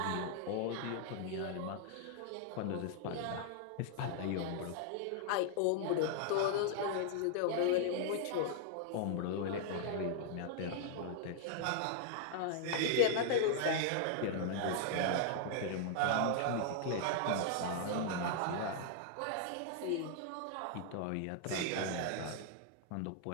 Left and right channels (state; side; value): different; both; correlation -0.01